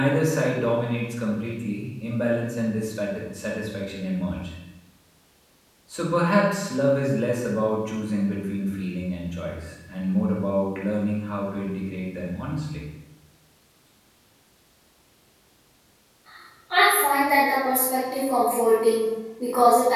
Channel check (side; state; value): both; identical; correlation 1.00